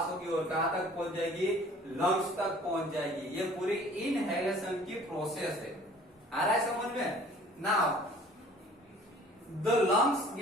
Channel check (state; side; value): normal; both; correlation 0.51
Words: होगी और कहां तक पहुंच जाएगी, लंग्स तक पहुंच जाएगी। ये पूरी इनहेलेशन की प्रोसेस है। आ रहा है समझ में? Now the lungs